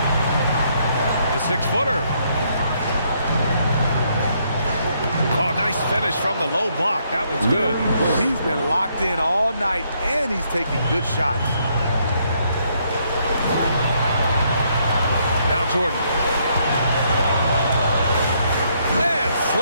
The 6-footer. Oh, nice finish from the low block. That was good. He's been locked in all night, and he's taking good shots. Now Jordan. And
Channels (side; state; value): both; inverted; correlation -0.72